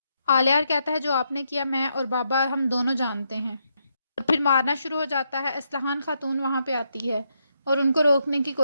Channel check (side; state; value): both; inverted; correlation -0.79